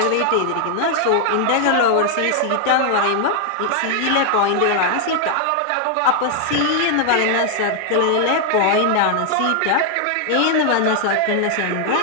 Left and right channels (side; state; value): both; different; correlation 0.00